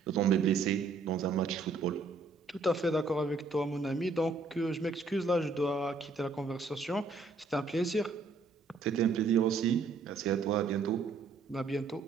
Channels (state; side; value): quieter; left; 4.2 dB